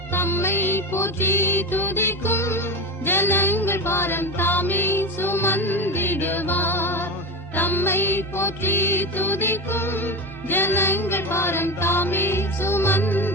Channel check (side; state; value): both; normal; correlation 0.23